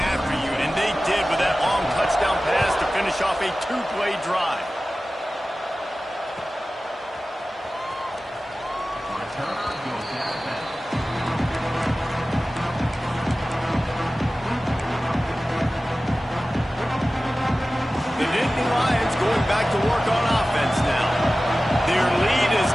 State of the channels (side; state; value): both; normal; correlation 0.96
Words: after you, and they did with that long touchdown pass to finish off a two-play drive.